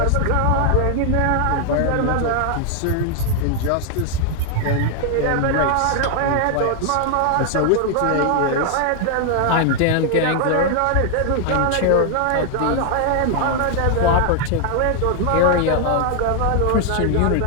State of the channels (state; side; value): different; both; correlation 0.00